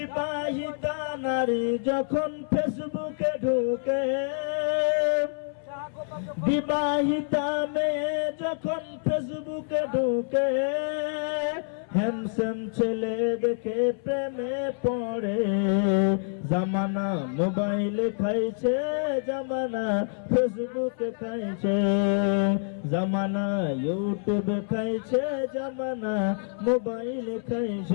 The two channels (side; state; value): right; silent; 60 dB below the other